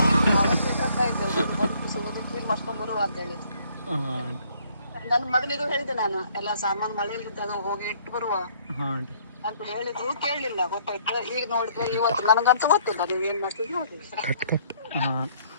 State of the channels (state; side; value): inverted; both; correlation -0.63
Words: ಕ್ಲೀನ್ ಮಾಡ್ಕೊಂಡ್ ಬರುವ ಅಂತ ಹೇಳಿ ಹಾಂ. ನನ್ನ ಮಗನಿಗೂ ಹೇಳಿದ್ದೆ ನಾನು, ಎಲ್ಲ ಸಾಮಾನು ಮಳೆಯಲ್ಲಿದ್ದಾಗ ಹೋಗಿ ಇಟ್ಟು ಬರುವ ಹಾಂ ಆಂಟಿ. ಅಂತ ಹೇಳಿದ್ರು, ಕೇಳಲಿಲ್ಲ. ಗೊತ್ತಾಯ್ತು. ಈಗ ನೋಡಿದ್ರೆ ಇವತ್ತು ನನಗಂತೂ ಗೊತ್ತಿಲ್ಲ ನೀವು ಏನ್ ಮಾಡ್ತೀವಿ ನೋಡಿ. ಹಾಂ.